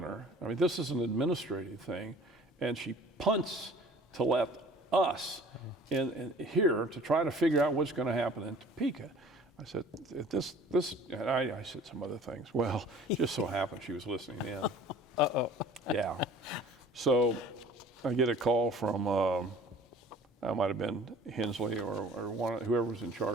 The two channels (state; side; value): normal; both; correlation 0.48